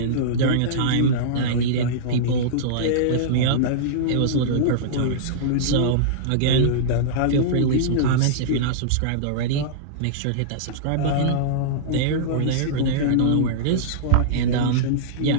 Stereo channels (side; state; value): both; different; correlation -0.03